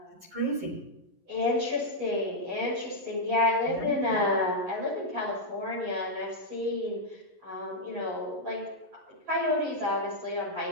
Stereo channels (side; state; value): left; late; 11 ms